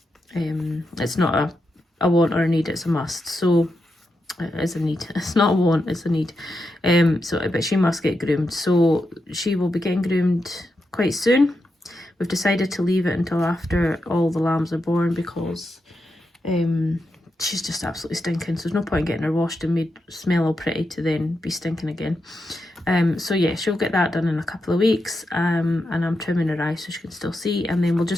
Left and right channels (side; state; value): both; normal; correlation 0.86